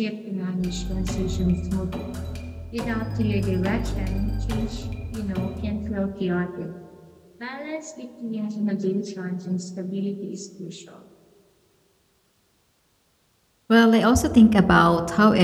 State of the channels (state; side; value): identical; both; correlation 1.00